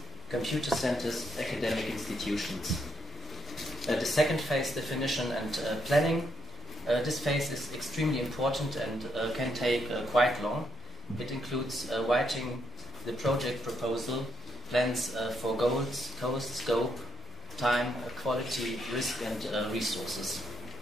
computer centers, academic institutions. The second phase, definition and planning. This phase is extremely important and can take quite long. It includes writing the project proposal, plans for goals, cost, scope, time, quality, risk, and resources.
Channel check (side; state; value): both; normal; correlation 0.77